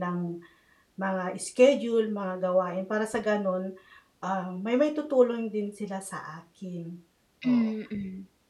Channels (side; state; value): both; identical; correlation 1.00